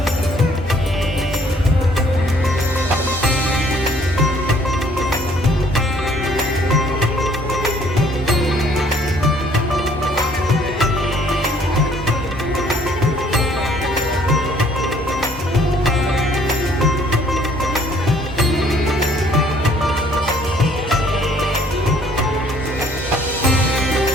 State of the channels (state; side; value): normal; both; correlation 0.60